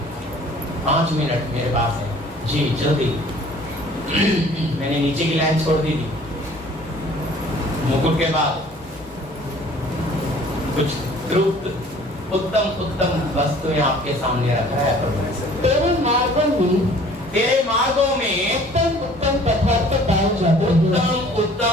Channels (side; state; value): both; normal; correlation 0.52